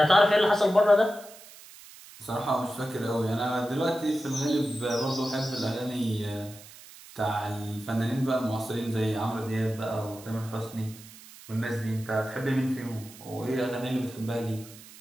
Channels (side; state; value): right; noise; hiss, 19 dB below the sound